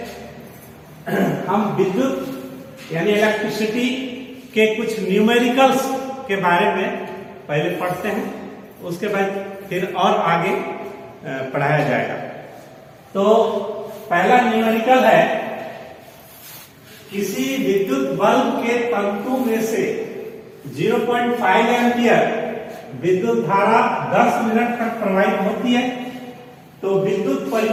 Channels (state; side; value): identical; both; correlation 1.00